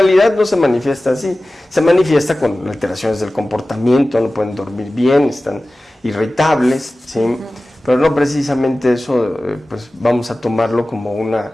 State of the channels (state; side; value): normal; both; correlation 0.96